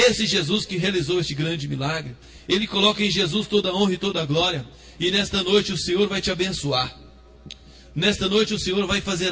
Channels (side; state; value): both; identical; correlation 1.00